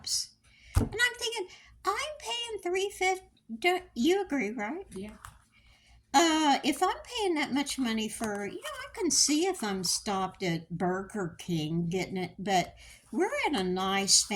And I'm thinking, I'm paying $3.50. You agree, right? Yeah. If I'm paying that much money for, I can see if I'm stopped at Burger King getting it, but we're in a nice,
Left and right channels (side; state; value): both; identical; correlation 1.00